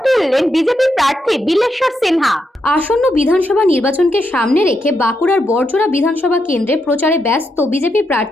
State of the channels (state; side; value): normal; both; correlation 0.82